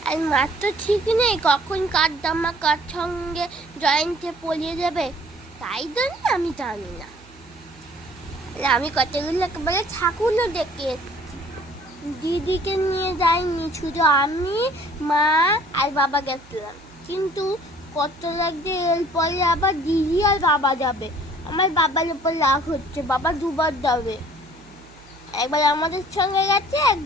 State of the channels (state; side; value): noise; right; hum, 25 dB below the sound